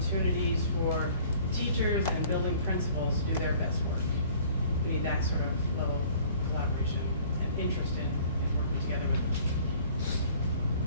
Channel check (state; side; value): inverted; both; correlation -0.53